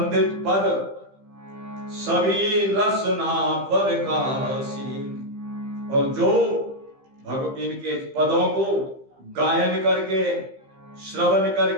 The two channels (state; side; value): late; left; 15 ms